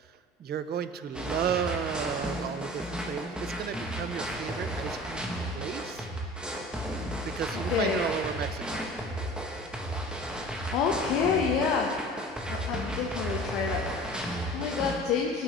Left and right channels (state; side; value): normal; both; correlation 0.42